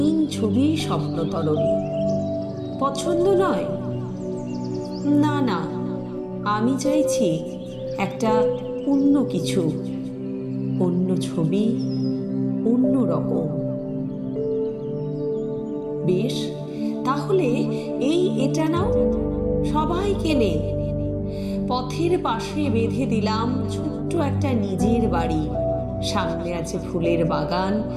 ছবি স্বপ্নতরণ। পছন্দ নয়? না না, আমি চাইছি একটা অন্য কিছু, অন্য ছবি অন্য রকম। বেশ, তাহলে এটা নাও, সবাই কেনে। পথের পাশে বেঁধে দিলাম ছোট্ট একটা নিজের বাড়ি, সামনে আছে ফুলের বাগান,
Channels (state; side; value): identical; both; correlation 1.00